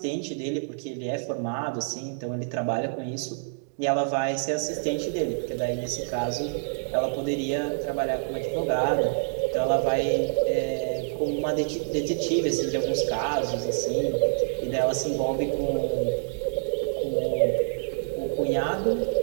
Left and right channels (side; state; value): left; silent; digital silence